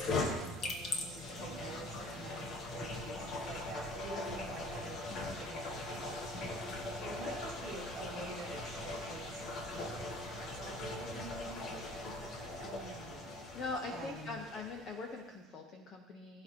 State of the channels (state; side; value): normal; both; correlation 0.50